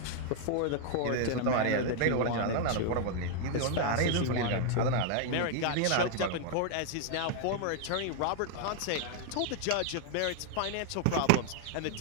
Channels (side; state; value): both; different; correlation 0.00